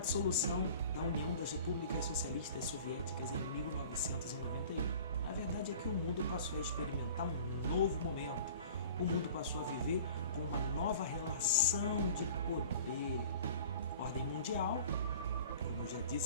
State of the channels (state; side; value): inverted; both; correlation -0.44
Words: da União das Repúblicas Socialistas Soviéticas em 1991. A verdade é que o mundo passou a experimentar um novo momento. O mundo passou a viver com uma nova relação de poder. Ordem mundial, como eu já